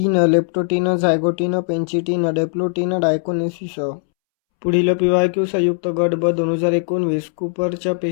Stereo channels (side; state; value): right; silent; 67 dB below the other